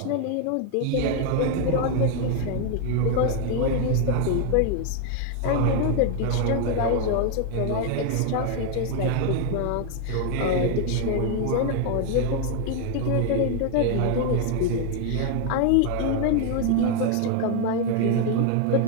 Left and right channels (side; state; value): both; different; correlation 0.01